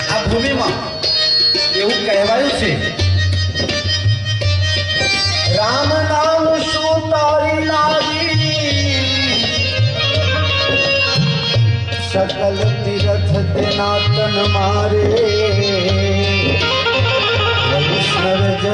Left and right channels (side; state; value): both; identical; correlation 1.00